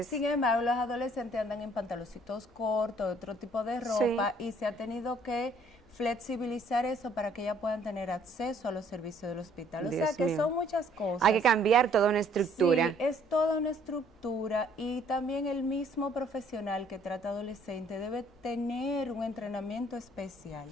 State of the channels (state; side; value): normal; both; correlation 0.61